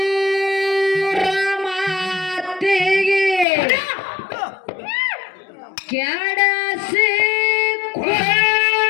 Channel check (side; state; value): right; drops out; at 3.5 s